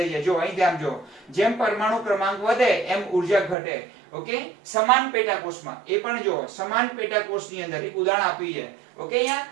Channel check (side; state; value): left; drops out; at 3.6 s